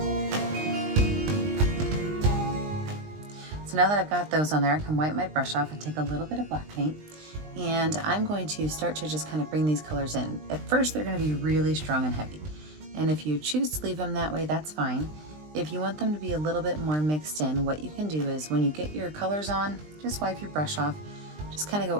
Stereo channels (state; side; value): late; left; 20 ms